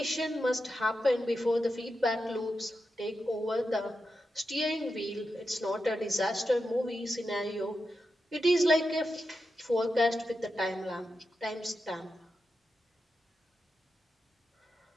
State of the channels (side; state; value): both; normal; correlation 0.89